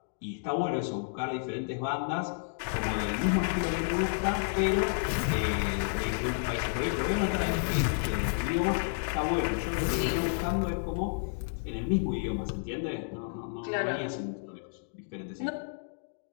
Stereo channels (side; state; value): right; silent; digital silence